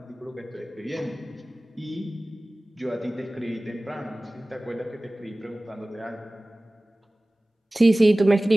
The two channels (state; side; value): normal; both; correlation 0.98